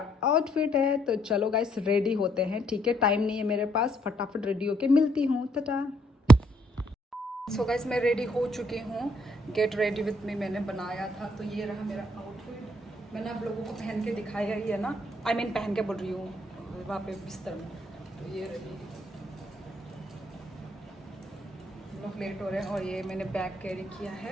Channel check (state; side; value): normal; both; correlation 0.70